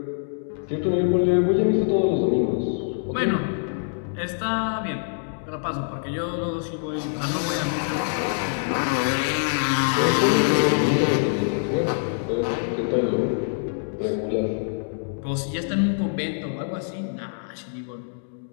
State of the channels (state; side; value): silent; right; digital silence